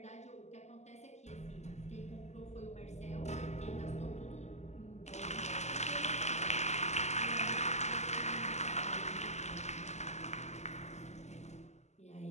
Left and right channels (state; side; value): late; right; 0.33 ms